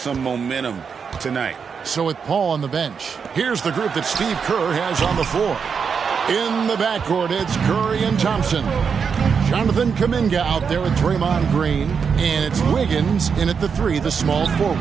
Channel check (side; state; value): left; quieter; 6.2 dB